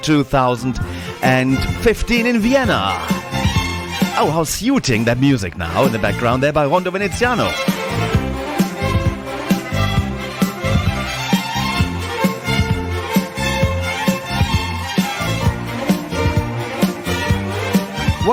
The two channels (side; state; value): both; identical; correlation 1.00